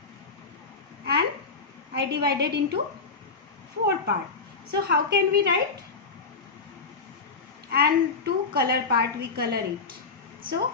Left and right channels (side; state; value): right; quieter; 4.3 dB